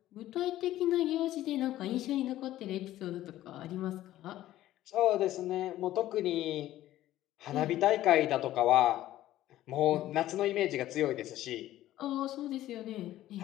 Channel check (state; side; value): quieter; right; 14.2 dB